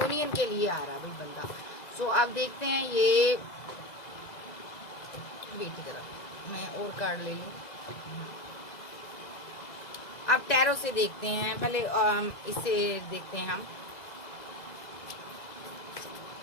के लिए आ रहा भाई बंदा। सो अब देखते हैं ये, वेट की तरफ मैं और कार्ड ले लूँ। अब टैरो से देखते हैं, पहले इससे देखते हैं हम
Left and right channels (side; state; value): right; late; 2.0 ms